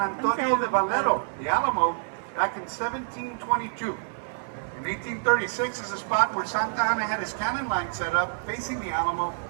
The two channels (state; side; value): silent; left; digital silence